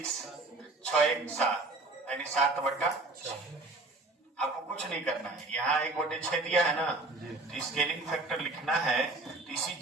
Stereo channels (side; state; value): left; quieter; 3.1 dB